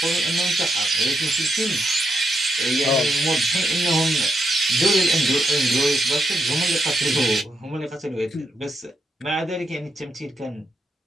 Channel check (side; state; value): both; normal; correlation 0.81